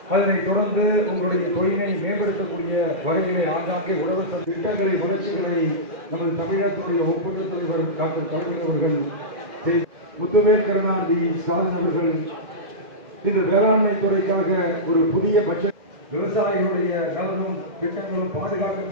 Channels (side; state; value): left; late; 2.1 ms